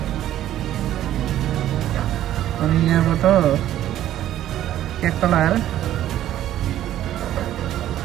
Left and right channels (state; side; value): quieter; left; 12.5 dB